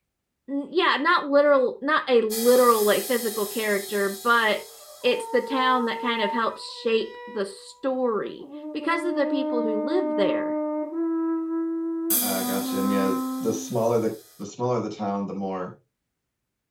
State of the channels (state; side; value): identical; both; correlation 1.00